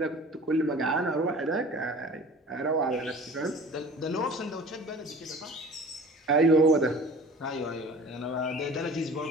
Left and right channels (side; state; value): both; normal; correlation 0.43